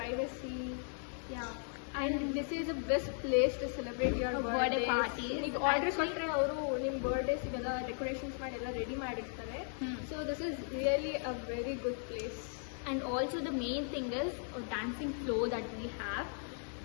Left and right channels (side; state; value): right; silent; 53 dB below the other